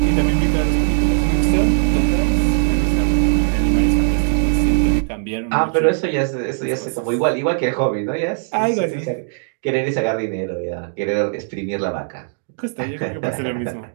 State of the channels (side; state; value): left; silent; digital silence